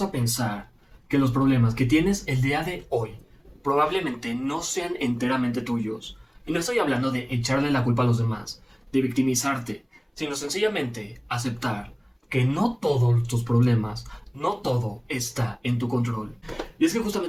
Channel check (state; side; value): identical; both; correlation 1.00